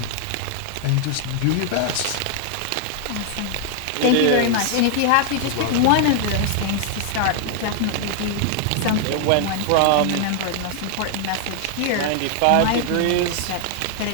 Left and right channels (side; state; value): both; different; correlation 0.00